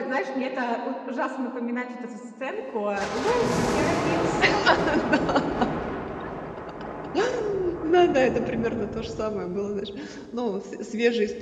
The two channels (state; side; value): identical; both; correlation 1.00